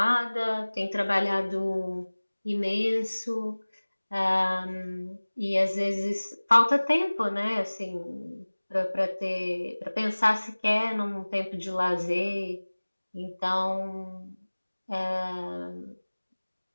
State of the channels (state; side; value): inverted; both; correlation -1.00